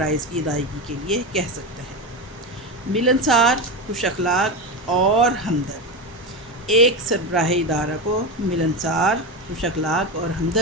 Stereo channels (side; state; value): both; normal; correlation 0.17